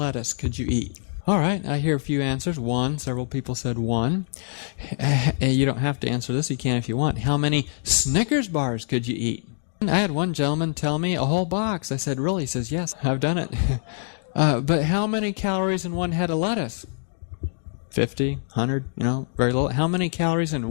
could you eat? All right, I hear a few answers. 1, several people said 1. You don't have to answer this, you can if you want. How many Snickers bars could you eat? I had one gentleman tell me a whole box. I said, really? He says, yes, I've done it. But how many calories in one head of lettuce? 50, 100, very little. How many calories in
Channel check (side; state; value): right; silent; digital silence